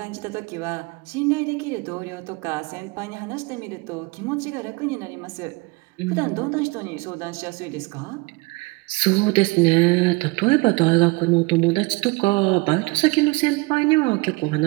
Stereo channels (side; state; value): left; quieter; 25.2 dB